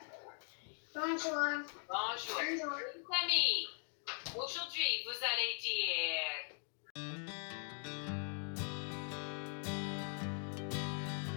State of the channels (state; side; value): silent; right; 50 dB below the other